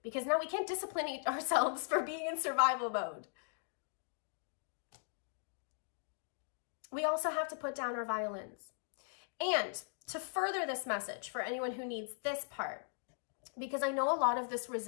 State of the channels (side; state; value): right; silent; digital silence